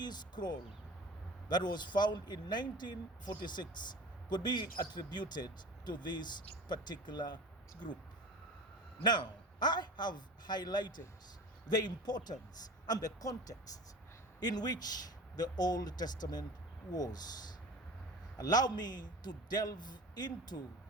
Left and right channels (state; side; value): normal; both; correlation 0.35